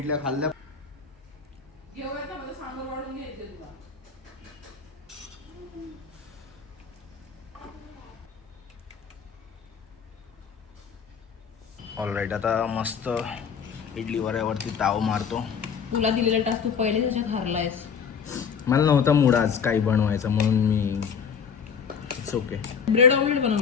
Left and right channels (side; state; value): right; quieter; 6.6 dB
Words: खाल्ल्या. घेऊयात ना, मला सांबर वाढून घ्यायचे तुला. ऑलराईट, आता मस्त इडली वऱ्यावरती ताव मारतो. तुला दिलेला टास्क तू पहिले त्याच्यात हारलायस. मला नव्हता मूड आज काही बनवायचा म्हणून me it's okay. Bread omelette